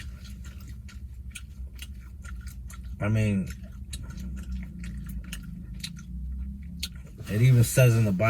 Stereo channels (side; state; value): both; identical; correlation 1.00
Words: I mean, it even says in the